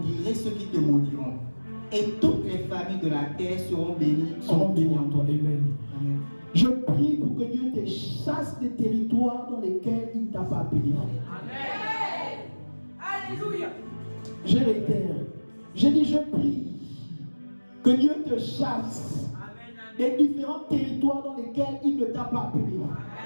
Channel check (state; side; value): inverted; both; correlation -1.00